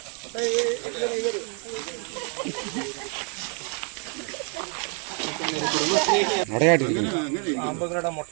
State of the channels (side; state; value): left; quieter; 38.4 dB